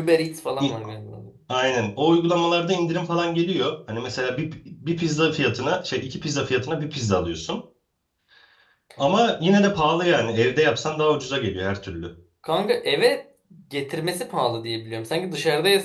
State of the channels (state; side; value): identical; both; correlation 1.00